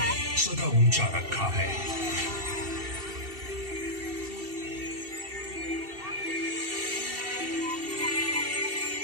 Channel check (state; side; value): late; left; 2.7 ms